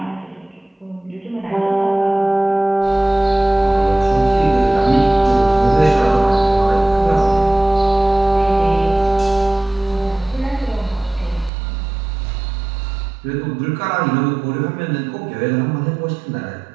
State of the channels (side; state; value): left; drops out; at 11.5 s